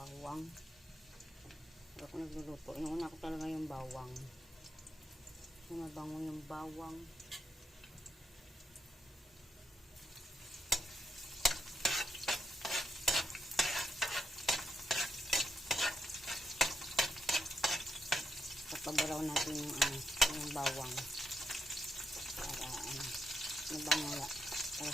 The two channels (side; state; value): both; normal; correlation 0.81